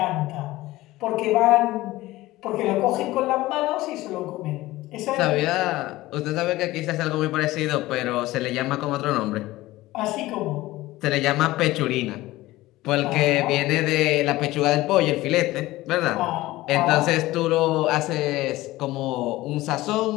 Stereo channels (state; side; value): quieter; right; 17.8 dB